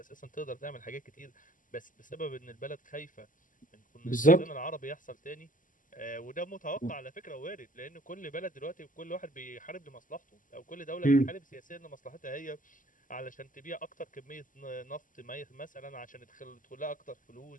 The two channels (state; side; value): late; right; 0.38 ms